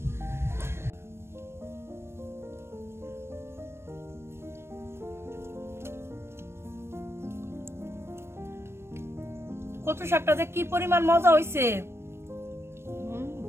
কচু শাকটা যে কি পরিমাণ মজা হয়েছে।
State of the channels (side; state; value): left; late; 0.12 ms